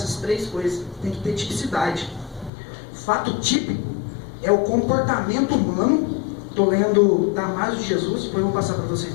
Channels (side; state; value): right; drops out; at 2.5 s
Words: três coisas. Tem que ter tipicidade. Fato típico é o comportamento humano. Estou lendo Damasio de Jesus, depois eu vou passar para vocês